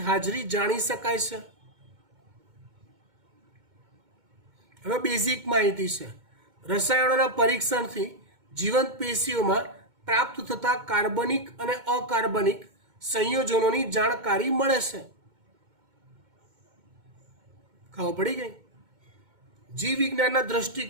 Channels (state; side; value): late; left; 2.2 ms